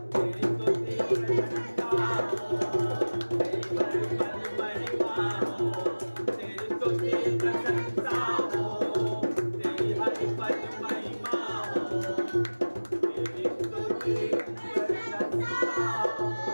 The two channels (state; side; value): inverted; both; correlation -1.00